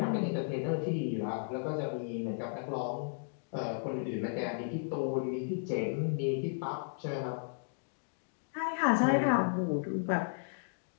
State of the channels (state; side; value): silent; right; digital silence